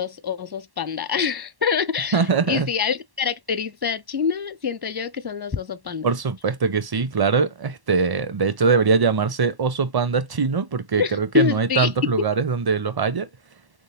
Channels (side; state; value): left; late; 1.1 ms